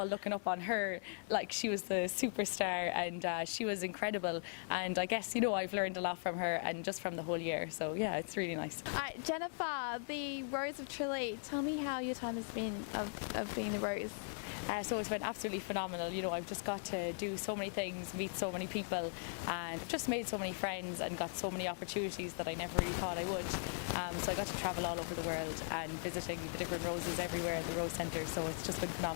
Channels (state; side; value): silent; right; digital silence